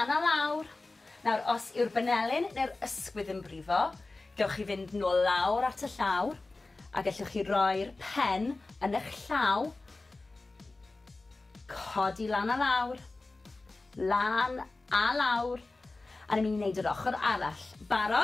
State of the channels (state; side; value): quieter; right; 3.3 dB